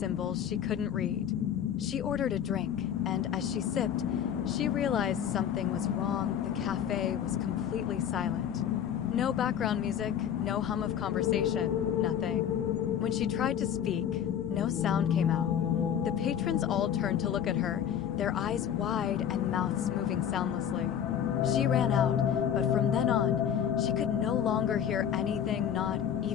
she couldn't read. She ordered a drink, and as she sipped, she realized something was wrong. The cafe was completely silent. No background music, no hum of conversation, nothing. When she tried to speak, no sound came out. The patrons all turned to look at her, their eyes wide and mouths moving soundlessly. She ran out, but from then on, she could no longer hear anything, not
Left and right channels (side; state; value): right; quieter; 9.2 dB